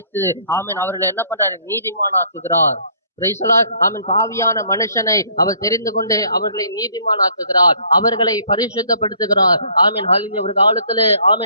ஆமென் அவர்களை என்ன பண்றாரு? நீதிமானாக்குகிறார். Praise the Lord. ஆமென். பாவியான மனுஷனை அவர் தெரிந்து கொண்டு அவர்களை நீதிமானாக்குகிறார், அவர்களை பரிசுத்தப்படுத்துகிறார். ஆமென் ஹalleluya. ஒரு காலத்துல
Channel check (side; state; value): both; inverted; correlation -0.61